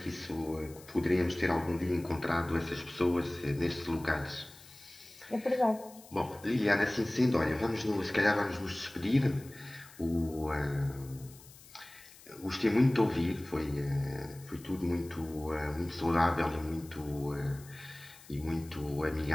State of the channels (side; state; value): left; noise; hiss, 21 dB below the sound